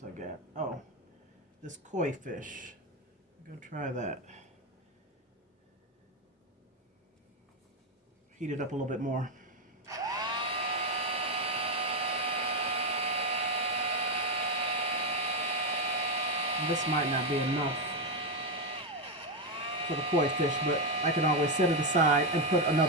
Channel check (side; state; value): both; normal; correlation 0.08